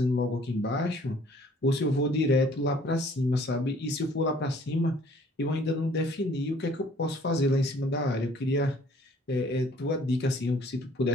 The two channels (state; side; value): normal; both; correlation 0.57